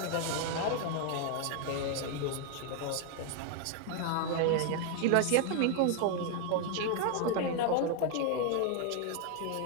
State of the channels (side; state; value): both; different; correlation 0.00